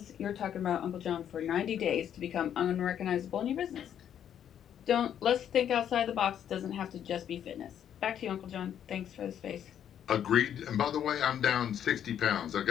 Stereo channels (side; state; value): right; quieter; 9.6 dB